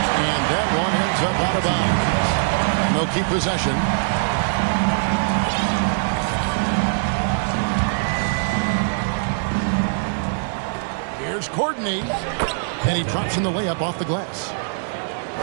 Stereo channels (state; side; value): silent; left; digital silence